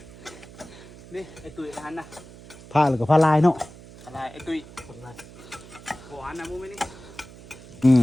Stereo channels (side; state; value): right; noise; hum, 18 dB below the sound